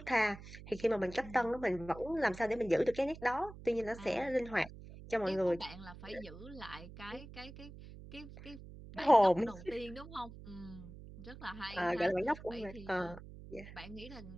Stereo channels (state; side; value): noise; right; hum, 15 dB below the sound